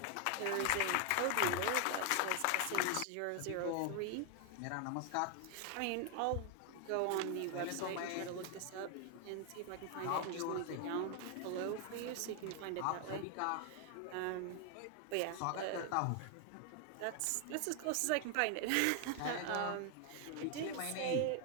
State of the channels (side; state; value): both; different; correlation 0.00